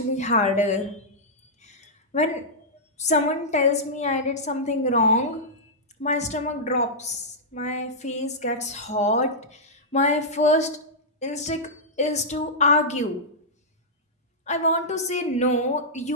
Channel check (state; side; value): normal; both; correlation -0.10